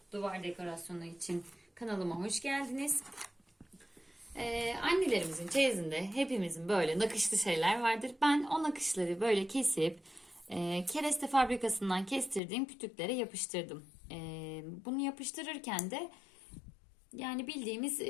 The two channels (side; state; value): right; drops out; at 12.4 s